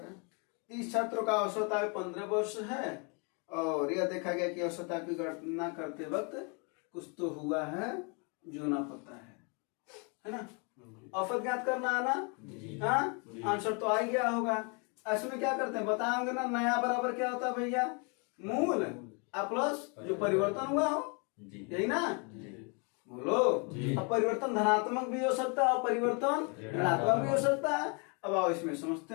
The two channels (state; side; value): quieter; right; 34.5 dB